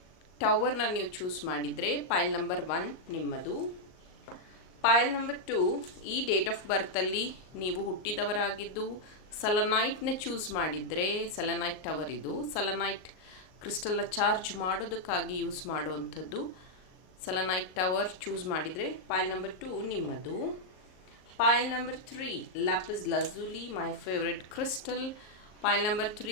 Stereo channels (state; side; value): late; right; 38 ms